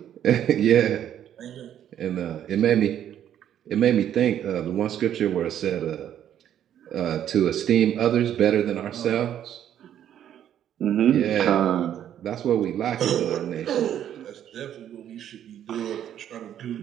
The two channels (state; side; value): quieter; left; 10.4 dB